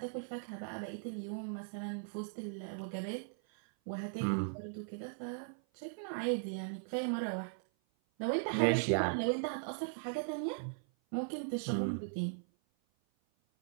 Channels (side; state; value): left; silent; 52 dB below the other